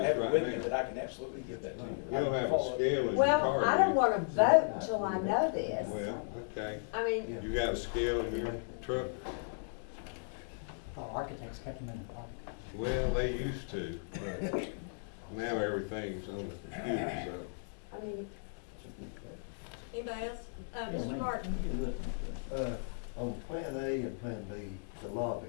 us have it with me, right but now. I can absolutely give that to you. You don't have a scale in your Well, car. I do don't you? wanna vote until I know this. Well, okay, I mean, you got a scale in your truck? Our architects kept them in the park. Well, they used to, but now everything's on the computer, so. I mean, Anybody else? Mr. Martin? On Plan A and Plan B, the lobby,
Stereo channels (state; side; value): silent; right; digital silence